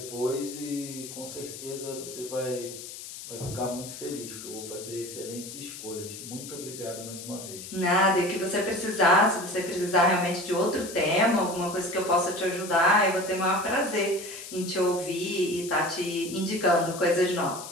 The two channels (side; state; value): left; noise; hiss, 11 dB below the sound